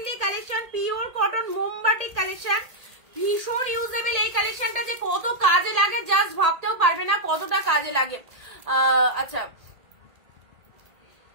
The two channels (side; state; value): left; late; 1.8 ms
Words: collection, pure cotton মোমবাটিক কালেকশন, ভীষণ ইউজেবল। এই কালেকশনটা যে কত কাজে লাগে জাস্ট ভাবতেও পারবে না কতটা কাজে লাগে। আচ্ছা,